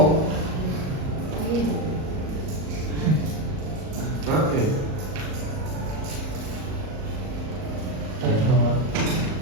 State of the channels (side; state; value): left; late; 38 ms